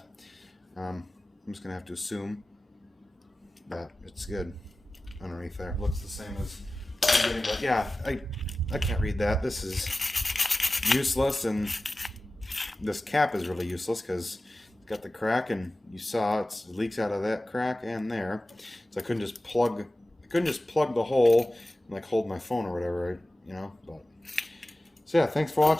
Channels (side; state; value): both; normal; correlation 0.96